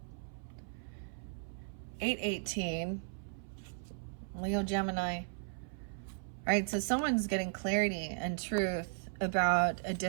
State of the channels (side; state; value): left; silent; 54 dB below the other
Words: 8-18. Leo, Gemini. All right, so someone's getting clarity and truth about a